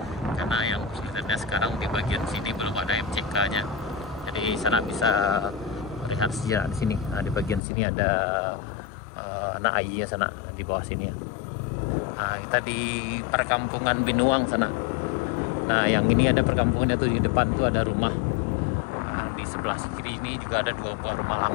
Karena yang kita lihat sekarang di bagian sini belum ada MCK-nya, jadi sana bisa melihat sejarah di sini. Nah, di bagian sini ada anak airnya sana di bawah sini ya. Nah, kita di perkampungan Binuang sana. Nah, yang ini ada perkampungannya tuh, di depan tuh ada rumah. Nah, di sebelah kiri ini juga ada dua rumah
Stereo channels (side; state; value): right; drops out; at 7.6 s